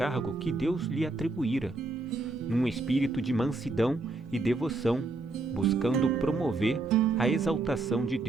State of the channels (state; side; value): quieter; left; 3.2 dB